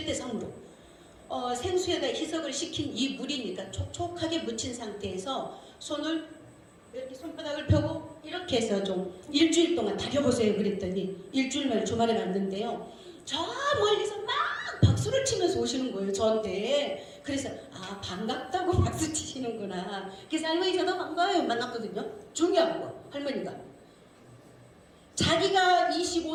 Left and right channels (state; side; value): identical; both; correlation 1.00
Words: 생수에다 희석을 시킨 이 물이니까 촉촉하게 묻힌 상태에서 손을 이렇게 손바닥을 펴고 이렇게 해서 좀 일주일 동안 다려보세요. 그랬더니 일주일 만에 주말에 갔는데요, 저 멀리서 막 박수를 치면서 오시는 거예요 저한테. 그래서 반갑다고 박수 치시는구나. 그래서 할머니 저도 반가워요 만났거든요. 중요한 거, 할머니가 자기가